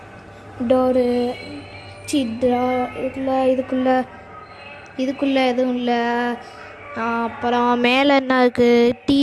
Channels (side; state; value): both; identical; correlation 1.00